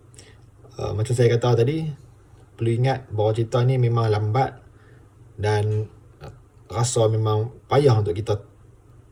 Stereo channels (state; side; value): identical; both; correlation 1.00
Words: macam saya kata tadi, perlu ingat bahawa cerita ni memang lambat dan rasa memang payah untuk kita